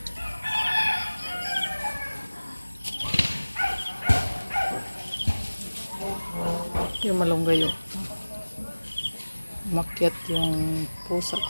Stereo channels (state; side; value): inverted; both; correlation -1.00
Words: Yung malunggay umakyat yung pusa